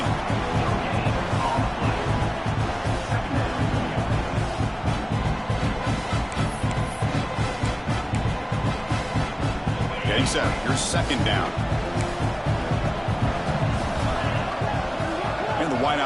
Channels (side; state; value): both; identical; correlation 1.00